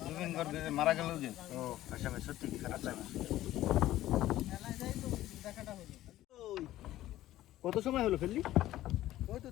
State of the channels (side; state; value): right; quieter; 14.5 dB